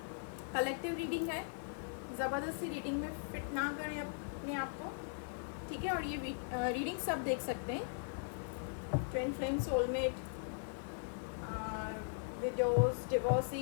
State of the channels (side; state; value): right; silent; 52 dB below the other